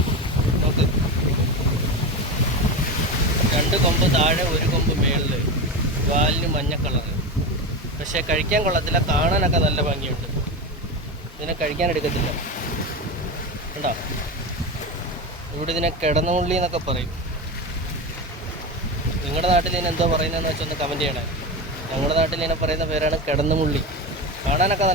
നോക്ക്. 2 കൊമ്പ് താഴെ, 1 കൊമ്പ് മേളിൽ, വാലിന് മഞ്ഞ കളറ്. പക്ഷേ കഴിക്കാൻ കൊള്ളത്തില്ല, കാണാനൊക്കെ നല്ല ഭംഗിയുണ്ട്. ഇതിനെ കഴിക്കാൻ എടുക്കത്തില്ല. കണ്ടോ, ഇവിടെ ഇതിനെ കിടന്നുള്ളി എന്നൊക്കെ പറയും. നിങ്ങളുടെ നാട്ടിൽ ഇതിന് എന്തോ പറയുന്നതെന്ന് വെച്ചാൽ ഒന്ന് കമൻറ്റ് ചെയ്യണേ. ഞങ്ങളുടെ നാട്ടിൽ ഇതിനെ പറയുന്ന പേരാണ് കിടന്നുമുള്ളി. കാണാനൊക്കെ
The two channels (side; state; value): both; normal; correlation 0.21